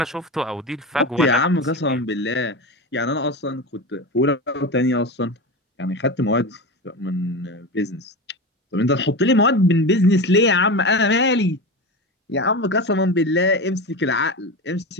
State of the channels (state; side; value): normal; both; correlation 0.23